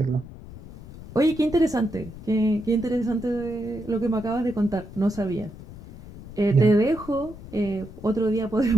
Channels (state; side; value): noise; left; rumble, 15 dB below the sound